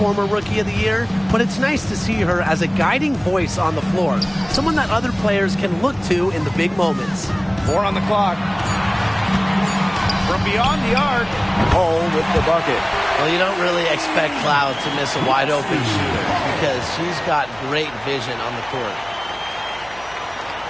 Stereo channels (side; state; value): right; noise; hum, 23 dB below the sound